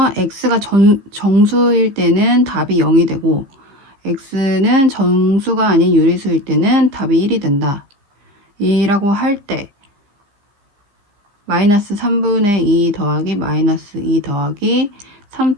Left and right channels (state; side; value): late; left; 15 ms